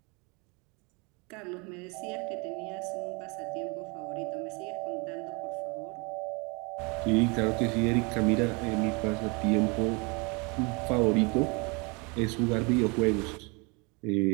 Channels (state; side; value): quieter; left; 30.2 dB